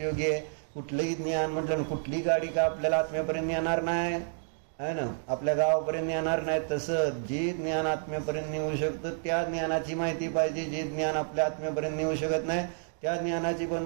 आहे. कुठलंही ज्ञान म्हटलं ना कुठली गाडी का आपल्याला आत्म्यापर्यंत येणार नाही आहे ना आपल्या गावापर्यंत येणार नाही. तसं जे ज्ञान आत्म्यापर्यंत नेऊ शकतं त्या ज्ञानाची माहिती पाहिजे. जे ज्ञान आपल्या आत्म्यापर्यंत नेऊ शकत नाही त्या ज्ञानाची पण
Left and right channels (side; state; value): left; silent; digital silence